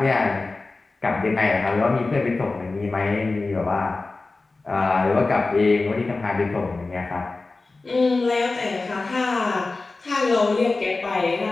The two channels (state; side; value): quieter; right; 3.5 dB